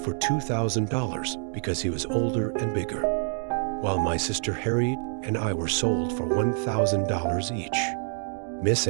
$2,000 because he was older and bigger, while my sister Harriet and I were sold for $1,000 each. Miss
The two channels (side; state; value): left; silent; digital silence